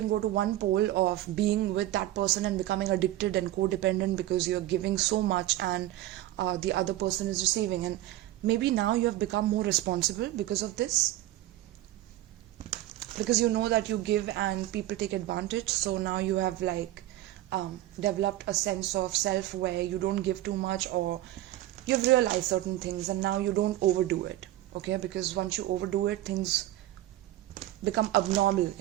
go to one pole of being with that person and becoming addicted and codependent because you're giving so much and the other person is receiving, and maybe now you have become more responsible because of this, because you know that you give and people take advantage. So now you have like developed a sense of self where you don't give too much, or you've realized certain things and now you don't overdo it. Okay, because once you overdo it, things become abnormal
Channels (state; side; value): quieter; left; 14.9 dB